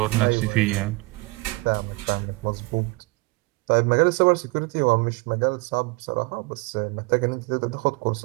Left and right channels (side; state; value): left; quieter; 24.8 dB